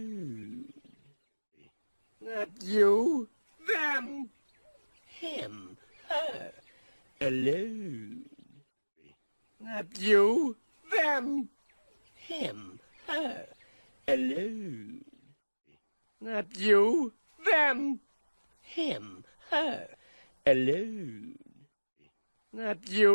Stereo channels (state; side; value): inverted; both; correlation -1.00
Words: Not you, them, him, her, alone. Not you, them, him, her, alone. Not you, them, him, her, alone. Not